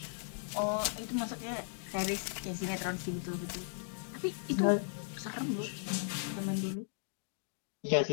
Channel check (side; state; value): right; silent; digital silence